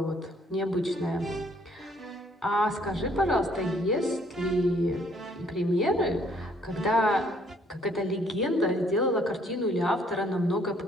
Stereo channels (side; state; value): both; normal; correlation 0.64